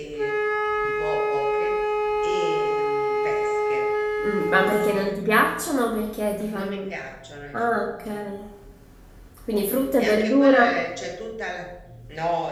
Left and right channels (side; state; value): both; identical; correlation 1.00